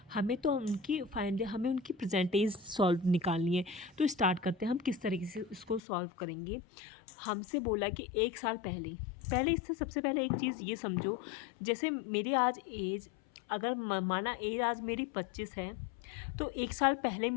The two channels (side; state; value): right; drops out; at 5.8 s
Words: हमें तो हमें उनकी प्रेजेंट एज सॉल्व निकालनी है। तो स्टार्ट करते हैं हम किस तरीके से इसको सॉल्व करेंगे। हमसे बोला कि 1 साल पहले पहले इससे सबसे पहले एक चीज़ ये समझो, जैसे मेरी आज एज, अगर माना एज आज मेरी 25 है, तो 1 साल पहले